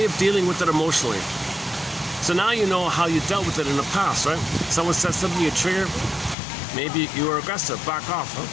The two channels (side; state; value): right; drops out; at 6.4 s